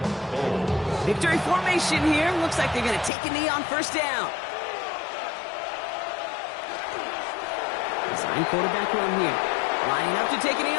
Victory formation here. Looks like they're going to take a knee on first down. Design quarterback run here. Lining up to take a knee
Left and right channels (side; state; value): right; drops out; at 3.1 s